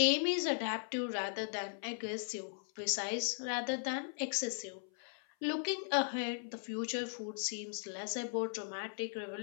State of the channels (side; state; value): right; silent; 53 dB below the other